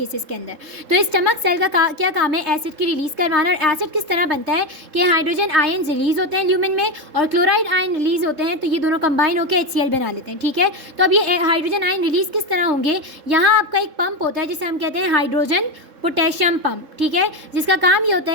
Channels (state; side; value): late; left; 3.7 ms